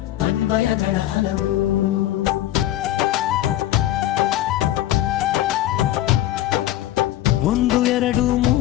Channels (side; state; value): right; quieter; 14.0 dB